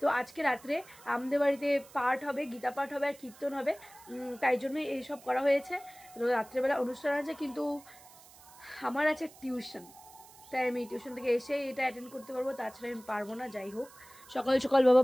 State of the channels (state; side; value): noise; right; hiss, 22 dB below the sound